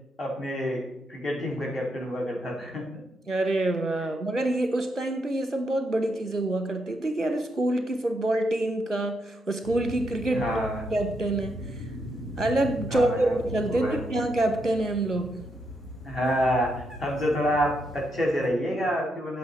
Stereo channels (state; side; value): normal; both; correlation 0.80